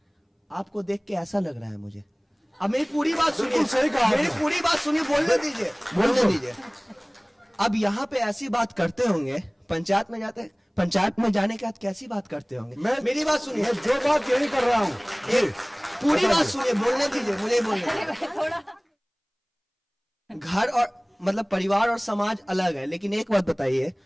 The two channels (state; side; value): identical; both; correlation 1.00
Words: आपको देख के ऐसा लग रहा है मुझे। अब मेरी पूरी बात सुनिए, मेरी पूरी बात सुनिए, बोलने दीजिए। अब यहाँ पे ऐसी बात करते होंगे, पंचायत में जाते, पंचायत में जाने के बाद कैसी बात करते होंगे? मेरी बात सुनिए, जो बात यही कर रहा हूँ, पूरी बात सुनिए, बोलने दीजिए, मुझे बोलने। घर और मतलब परिवार और समाज अलग है, लेकिन एक बात बताइए,